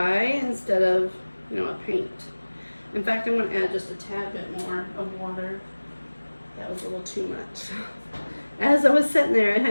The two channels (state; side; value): inverted; both; correlation -1.00